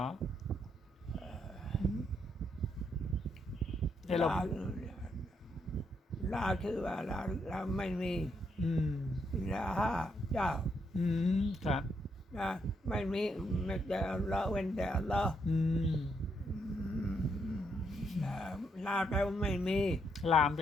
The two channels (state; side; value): normal; both; correlation 0.77